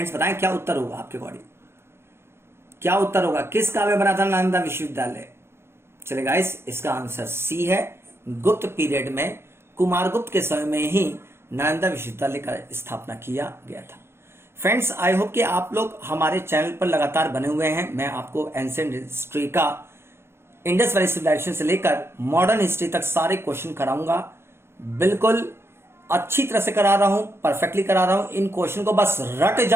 बताएं क्या उत्तर होगा आपके अकॉर्डिंग, क्या उत्तर होगा, किस काल में बना था नालंदा विश्वविद्यालय। चले गाइस, इसका आंसर सी है, गुप्त पीरियड में कुमारगुप्त के समय में ही नालंदा विश्वविद्यालय का स्थापना किया गया था। फ्रेंड्स आई होप कि आप लोग हमारे चैनल पर लगातार बने हुए हैं। मैं आपको एंशिएंट हिस्ट्री का इंडस वैली सिविलाइजेशन से लेकर मॉडर्न हिस्ट्री तक सारे क्वेश्चन कराऊंगा, बिल्कुल अच्छी तरह से करा रहा हूं, परफेक्टली करा रहा हूं। इन क्वेश्चन को बस रट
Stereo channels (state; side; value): late; left; 0.12 ms